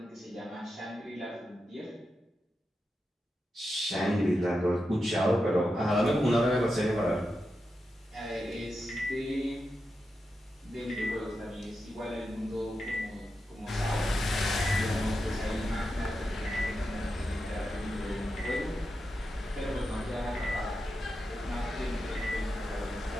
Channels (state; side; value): normal; both; correlation 0.89